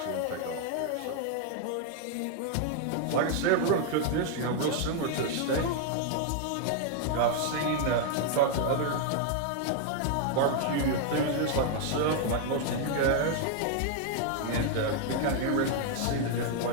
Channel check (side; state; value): both; different; correlation 0.00